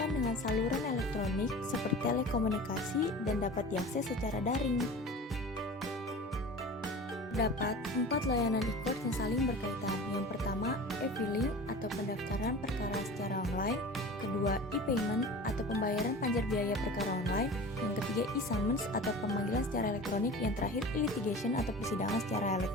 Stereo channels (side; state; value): both; normal; correlation 0.36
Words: dengan saluran elektronik seperti telekomunikasi dan dapat diakses secara daring. Terdapat 4 layanan e-court yang saling berkaitan. Yang pertama, e-filing atau pendaftaran perkara secara online. Kedua, e-payment atau pembayaran panjar biaya perkara online. Yang ketiga, e-summons atau pemanggilan secara elektronik. Yang terakhir, e-litigation atau persidangan secara